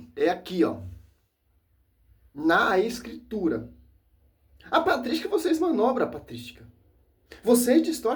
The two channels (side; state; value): both; identical; correlation 1.00